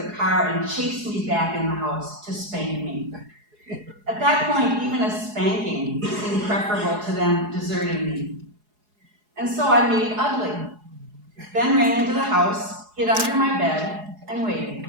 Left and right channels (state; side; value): late; left; 4.8 ms